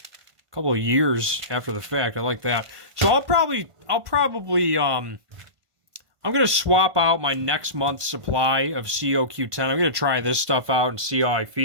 couple of years after the fact. I like that. So I'm going to swap out my next month's supply of COQ10. I'm going to try this stuff out and see how I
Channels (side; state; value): left; late; 1.5 ms